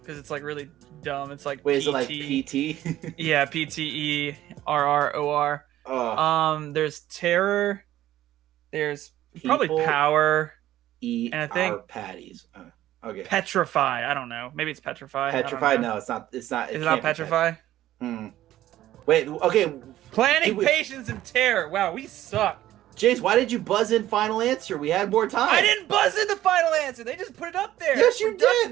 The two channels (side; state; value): left; quieter; 13.8 dB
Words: because it's like really dumb. It's like Wait, PT. is it like PT? Yeah, PTERROR. There's terror. There's probably People power. Eat And I think- our patties. Okay. Petrify. I don't know. Maybe it's petrify. I don't Petrify? know. No, it's not. It's not. Is it can't not be petrify? Wait. Okay. Planning, Wait. patience, and terror. Wow, we suck. Jace, why did you buzz in final answer? We had more time. I didn't buzz in the final answer. They just put it up there. Yes, you